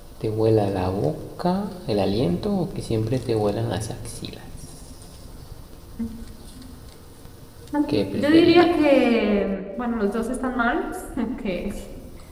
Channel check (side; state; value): both; identical; correlation 1.00